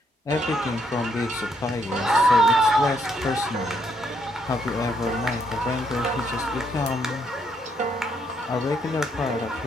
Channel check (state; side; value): normal; both; correlation 0.73